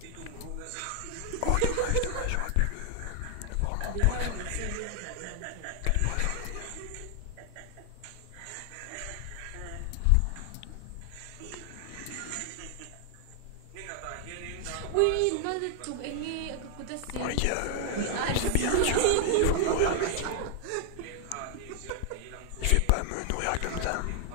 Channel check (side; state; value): both; different; correlation 0.00